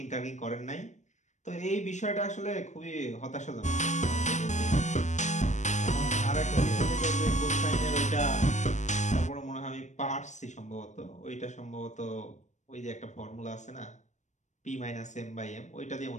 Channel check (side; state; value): right; late; 0.34 ms